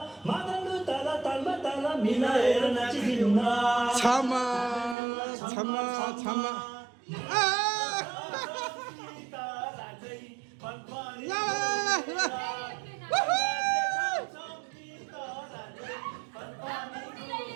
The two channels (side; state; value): left; drops out; at 5.0 s